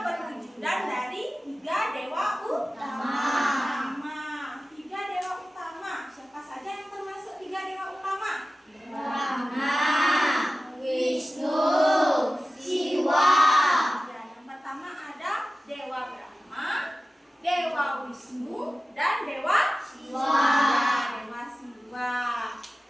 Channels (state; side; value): normal; both; correlation 0.96